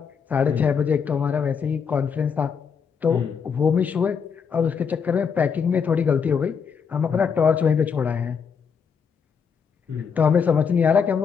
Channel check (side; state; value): right; quieter; 6.4 dB